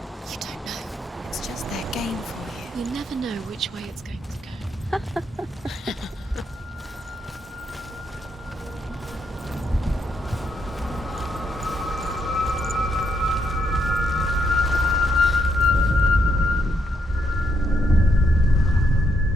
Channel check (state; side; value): normal; both; correlation 0.77